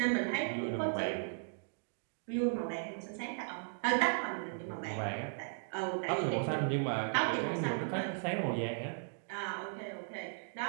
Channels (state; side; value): silent; left; digital silence